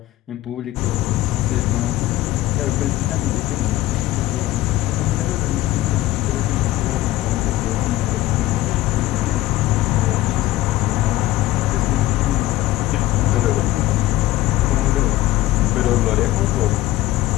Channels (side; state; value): right; quieter; 16.1 dB